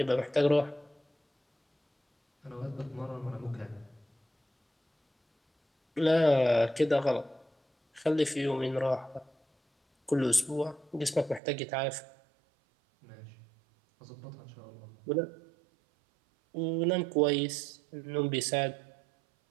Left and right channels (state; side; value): drops out; left; at 11.4 s